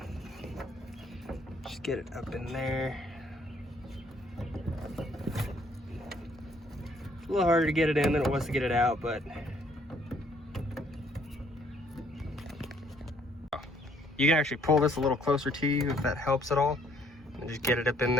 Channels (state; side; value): normal; both; correlation 0.65